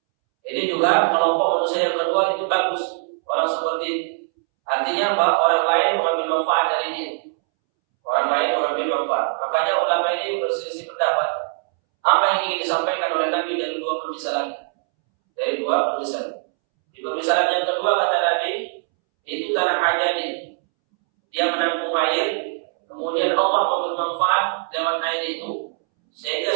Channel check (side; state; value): left; silent; 64 dB below the other